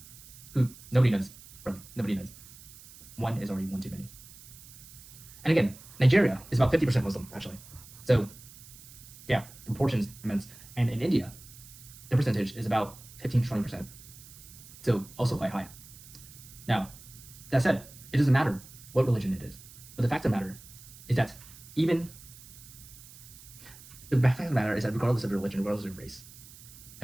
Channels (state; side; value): noise; right; hiss, 19 dB below the sound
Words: Nobody knows, really, nobody knows. One is already one too many. And again, Nigeria is about 50% Muslim, actually. So, yeah, the proportion is immense. And in India, the percentage is about 15 to 20%. So, also quite high. Now, that said, it doesn't matter what religion it is. But the fact of the matter is that regardless of your religion, regardless of your race,